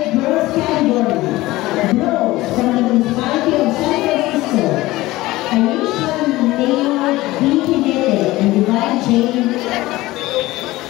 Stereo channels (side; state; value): right; quieter; 18.4 dB